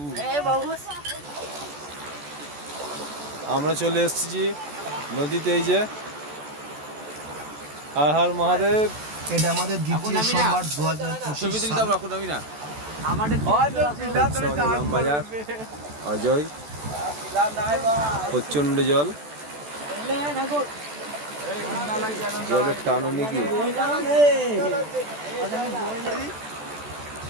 আমরা চলে এসেছি নদীতে। এই যে হর হর মহাদেব। এটা আমাদের দ্বিতীয় সোমবার 2025 সাল। ইলামবাজার অজয়, প্রচন্ড জল, জলের টানো নাকি।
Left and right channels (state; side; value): late; left; 14 ms